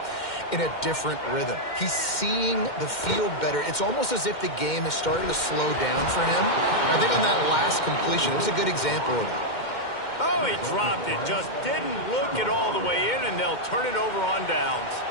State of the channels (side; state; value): right; late; 2.1 ms